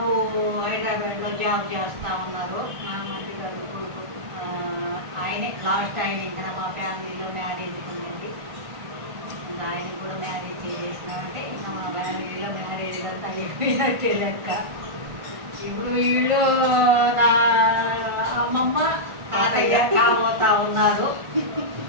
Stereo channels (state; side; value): late; left; 1.5 ms